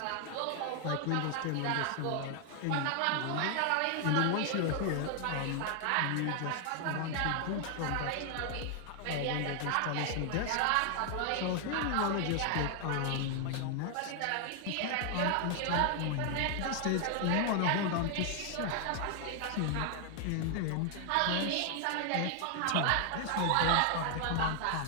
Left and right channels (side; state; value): both; different; correlation 0.00